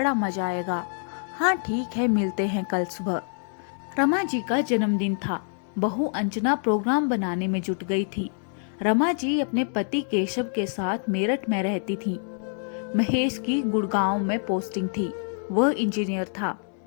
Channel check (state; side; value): silent; right; 57 dB below the other